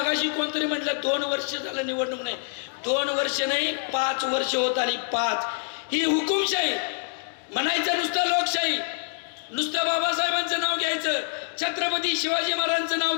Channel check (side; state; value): right; silent; 59 dB below the other